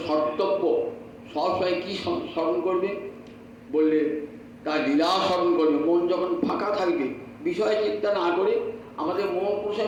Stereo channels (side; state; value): both; identical; correlation 1.00